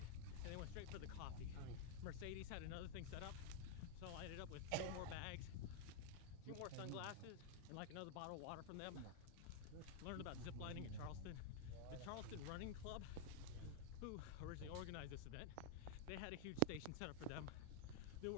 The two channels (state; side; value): different; both; correlation 0.00